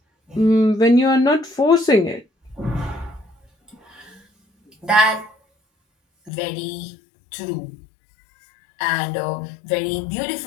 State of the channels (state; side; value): drops out; right; at 6.3 s